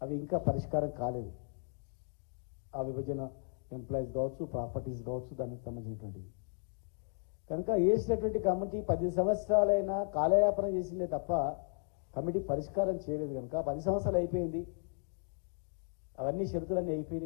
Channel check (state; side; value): silent; right; 54 dB below the other